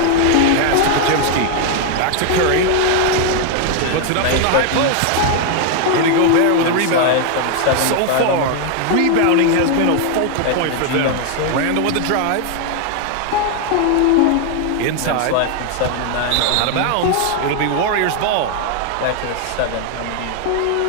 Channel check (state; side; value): different; both; correlation 0.01